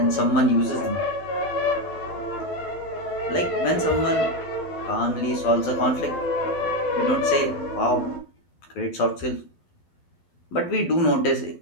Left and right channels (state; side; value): late; right; 12 ms